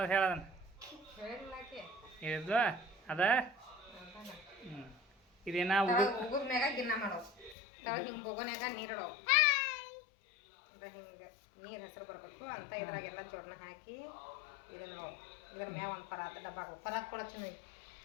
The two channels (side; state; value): right; drops out; at 7.6 s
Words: ಹೇಳೋದನ್ನ ಇದು ಅದ. ಇದೇನ ಉಗುದ ಮ್ಯಾಗ ಗಿನ್ನ ಮಾಡೋದು. ಹಿಂಗೆ ಬೊಗೋನ್ಯಾಗ ನೀರಿಡೋ, ಹಿಂಗೆ ನೀರು ಹೆಸರು ಬರಬೇಕು ಅಂತ. ಇದ್ರಾಗೆಲ್ಲ ಜೋಡಣ ಹಾಕಿ ಇದನ್ನ ನೋಡಿ, ಇದ್ರ ಮ್ಯಾಗ ಒಂದು ಪರಾತ ಡಬ್ಬ ಹಾಕೋ. ಪರಾತ್ ಕೂಡ ಚೆನ್ನಾಗಿ